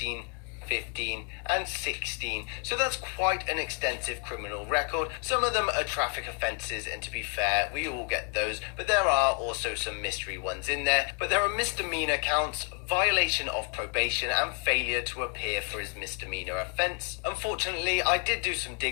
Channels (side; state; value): right; quieter; 34.9 dB